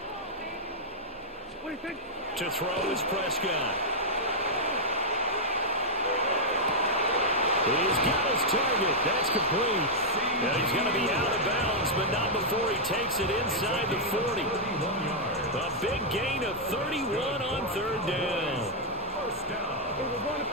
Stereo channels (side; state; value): both; normal; correlation -0.06